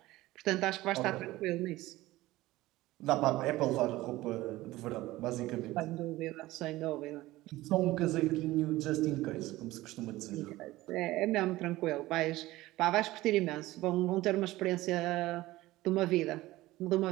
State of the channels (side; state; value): left; quieter; 17.8 dB